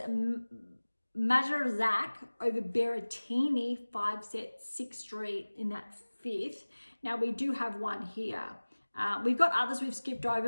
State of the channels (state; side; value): inverted; both; correlation -1.00